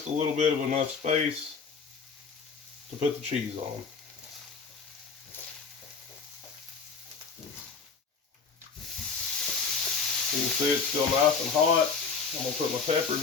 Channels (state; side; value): quieter; right; 5.3 dB